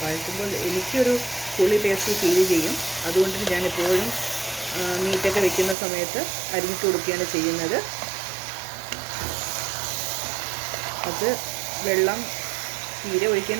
വഴറ്റുമ്പോൾ എനിക്കൊരു പുളി ടേസ്റ്റ് ഫീൽ ചെയ്യും. അതുകൊണ്ട് ഞാൻ എപ്പോഴും മീറ്റൊക്കെ വെക്കുന്ന സമയത്ത് അരിഞ്ഞിട്ട് കൊടുക്കുകയാണ് ചെയ്യുന്നത്. അത് വെള്ളം തീരെ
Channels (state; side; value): drops out; left; at 5.8 s